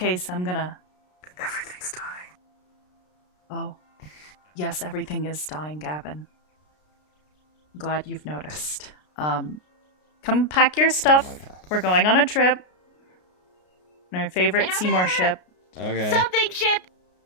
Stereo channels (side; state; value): right; late; 33 ms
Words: I'm gonna. Everything's dying. Oh, yes, everything is dying, Gavin. Glad you've noticed. Come pack your stuff. We're going on a trip. Our favorite Seymour ship. Okay. Something ship!